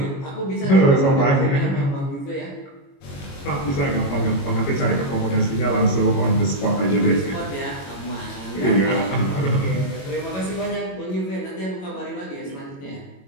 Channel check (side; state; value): right; late; 22 ms